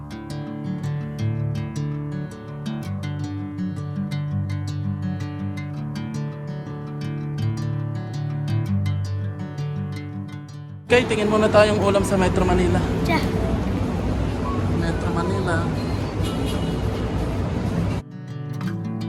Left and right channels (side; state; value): both; identical; correlation 1.00